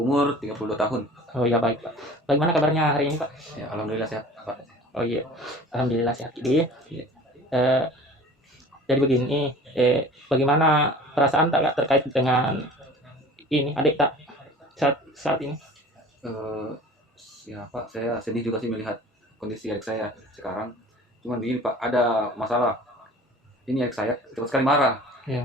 32 tahun. Oh iya baik Pak, bagaimana kabarnya hari ini Pak? Ya, alhamdulillah sehat, Pak. Oh iya, Alhamdulillah sehat. Jadi, Iya. eh, jadi begini, bagaimana perasaan Tak Kak terkait dengan ini adik Tak saat ini? Eh, ya Pak, saya sedih juga sih melihat kondisi adik saya sekarang. Cuman begini Pak, ada masalah. Ini adik saya cepat sekali marah. Ya.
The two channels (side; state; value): both; normal; correlation 0.43